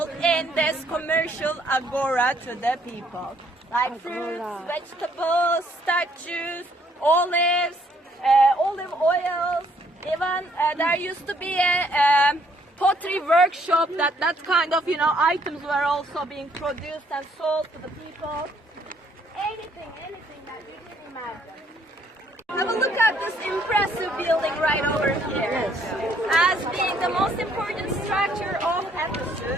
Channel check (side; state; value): both; normal; correlation 0.66